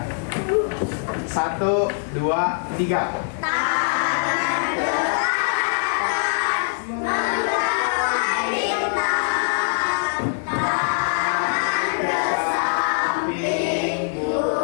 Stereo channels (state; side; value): silent; right; digital silence